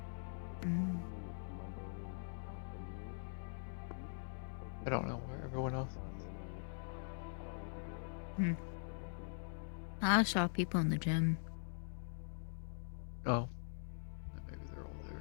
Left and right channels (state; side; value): silent; right; digital silence